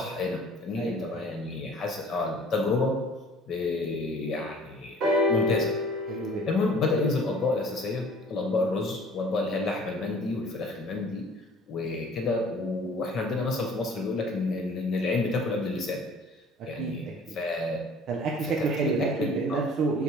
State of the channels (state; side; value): normal; both; correlation 0.49